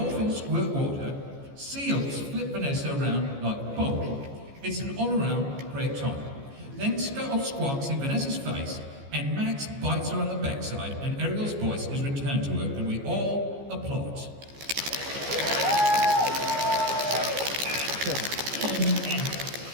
squirt water, seals flip Vanessa around like a bowl. It's an all-around great time. Then Scuttle squawks in Vanessa's face, and Max bites her on the backside, and Ariel's voice is returned to her, and we all applaud.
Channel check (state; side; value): late; left; 14 ms